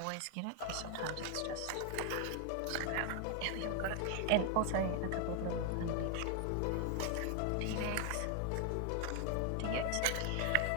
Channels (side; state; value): both; different; correlation 0.01